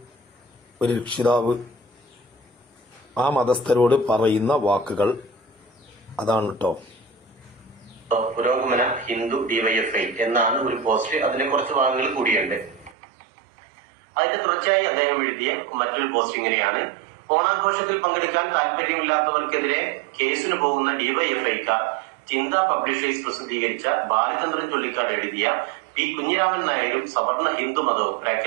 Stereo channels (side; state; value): left; drops out; at 13.0 s